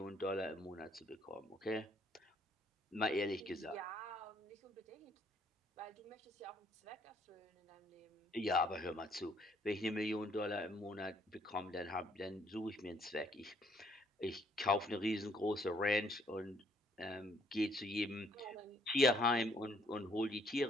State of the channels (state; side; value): normal; both; correlation 0.66